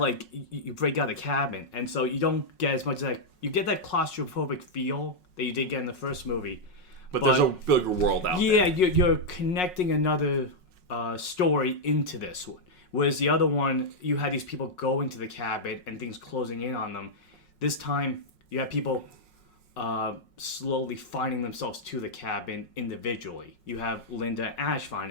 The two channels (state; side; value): late; right; 5.5 ms